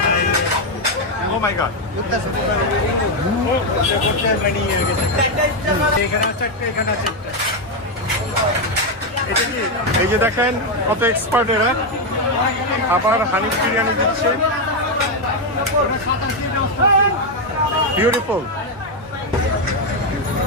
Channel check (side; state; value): both; normal; correlation 0.04